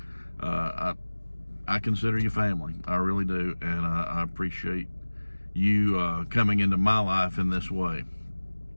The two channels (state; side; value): inverted; both; correlation -1.00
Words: I consider you family. I really do. And I appreciate you coming into my life in this way.